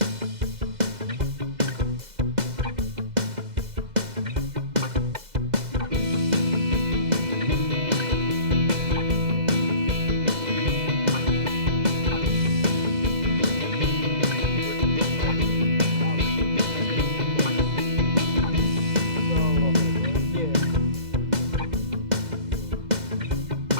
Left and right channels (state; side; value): late; left; 2.0 ms